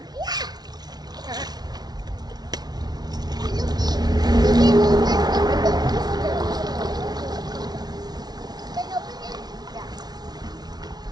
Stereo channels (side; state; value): left; late; 0.19 ms